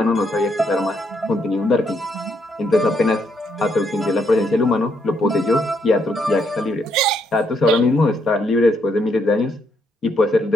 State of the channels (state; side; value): normal; both; correlation 0.74